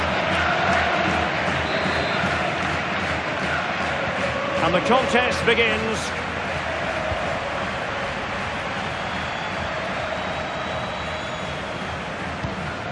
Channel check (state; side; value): identical; both; correlation 1.00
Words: And the contest begins.